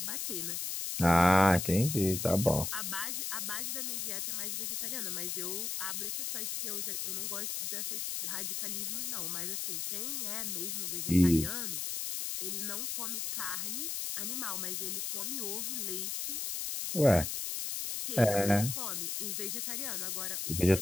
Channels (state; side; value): noise; left; hiss, 2 dB below the sound